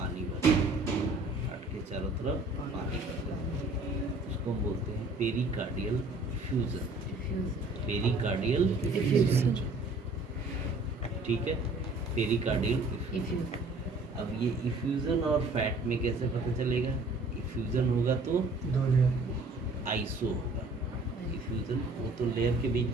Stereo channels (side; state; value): left; quieter; 3.1 dB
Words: भर जाता है, हार्ट के चारों तरफ पानी भर जाता है, उसको हम बोलते हैं पेरिकार्डियल इफ्यूजन। पेरिकार्डियल इफ्यूजन, ठीक है, पेरिकार्डियल इफ्यूजन। अब ये इफ्यूजन और फैट में कैसे पता चलेगा? इफ्यूजन होगा तो आइसो होगा। इफ्यूजन वो तो लेयर के